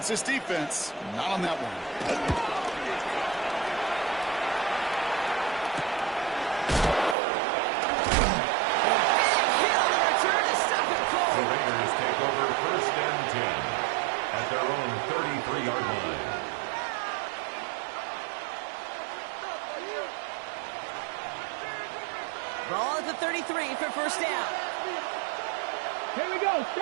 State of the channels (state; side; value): drops out; left; at 7.2 s